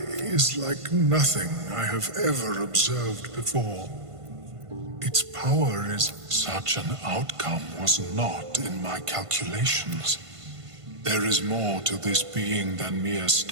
is like nothing I have ever observed before. Its power is... Such an outcome was not in my calculations. There is more to this being than mere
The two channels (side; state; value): left; late; 1.5 ms